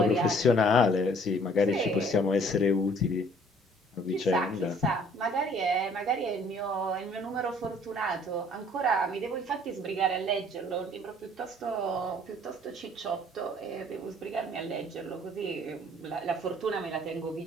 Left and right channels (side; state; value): both; normal; correlation 0.56